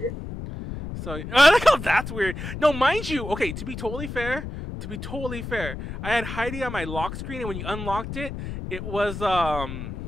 So I like how that's weird. No, mind you, okay, to be totally fair, I had Heidi on my lock screen, and when you unlocked it, it was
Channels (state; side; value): noise; left; rumble, 8 dB below the sound